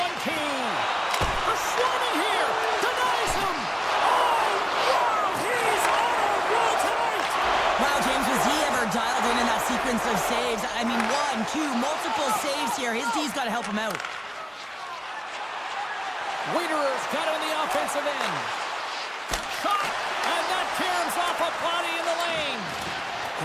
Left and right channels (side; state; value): both; identical; correlation 1.00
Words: too. A swarming here. Denies him. Oh, wow, he's on a roll tonight. Wow, James, was he ever dialed in that sequence of saves? I mean, 1, 2, multiple saves here. His D's got to help him out. Wiederer's got it on the offensive end. Shot, and off a body in the lane.